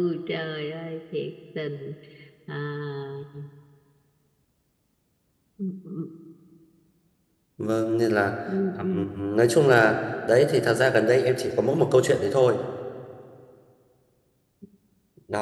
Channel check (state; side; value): identical; both; correlation 1.00